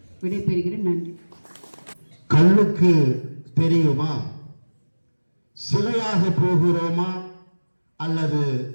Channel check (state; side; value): inverted; both; correlation -1.00